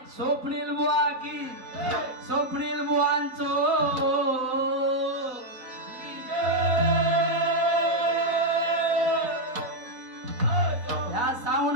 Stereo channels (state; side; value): late; left; 3.9 ms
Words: स्वप्नील बुवा की स्वप्नील बुवांचो या